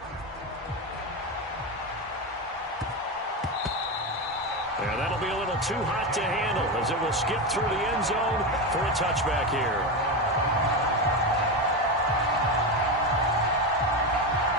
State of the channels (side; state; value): both; normal; correlation 0.16